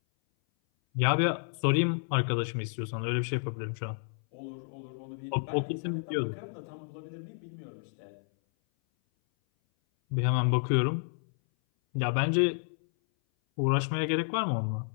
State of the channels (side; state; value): right; silent; 57 dB below the other